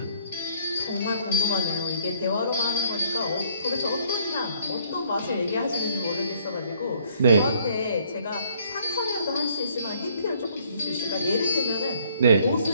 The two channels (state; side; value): inverted; both; correlation -0.63